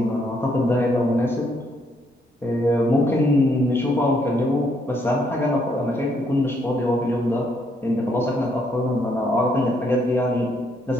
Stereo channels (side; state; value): both; normal; correlation 0.72